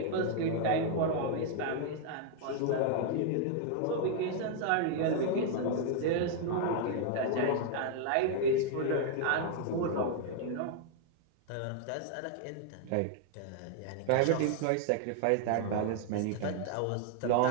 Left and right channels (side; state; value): both; different; correlation 0.00